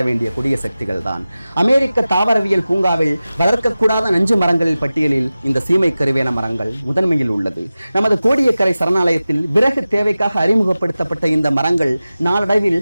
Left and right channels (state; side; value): inverted; both; correlation -0.96